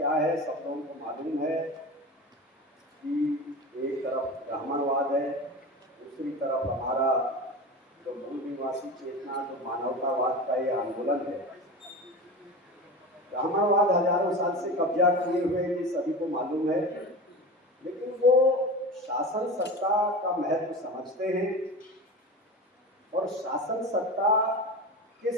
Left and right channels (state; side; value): normal; both; correlation 0.29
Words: है सब लोगों को मालूम है कि एक तरफ ब्राह्मणवाद है, दूसरी तरफ हमारा जो मूल निवासी चेतना, जो मानवतावाद का ये आंदोलन है। ब्राह्मणवाद हजारों साल से कब्जा किए हुए ये सभी को मालूम है, लेकिन वो शासन सत्ता का महत्व समझते हैं और शासन सत्ता